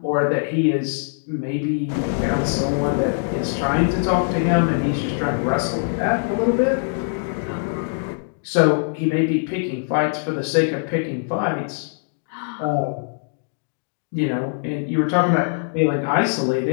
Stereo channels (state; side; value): silent; right; digital silence